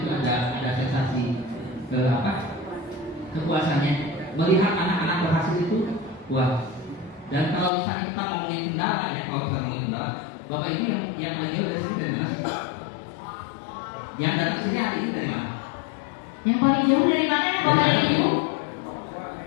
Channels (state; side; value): drops out; right; at 7.7 s